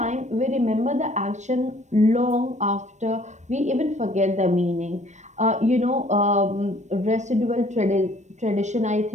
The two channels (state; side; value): late; left; 0.34 ms